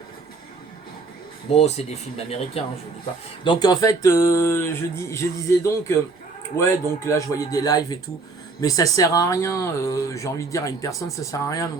Bon, c'est des films américains, hein, je vous dis pas. Donc, en fait, je disais donc... ouais, donc là, je voyais des lives et tout. Mais ça sert à rien, j'ai envie de dire à une personne, ça sert à rien de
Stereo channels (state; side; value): quieter; left; 4.0 dB